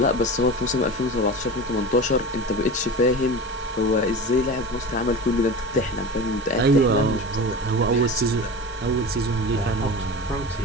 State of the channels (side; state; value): both; normal; correlation 0.31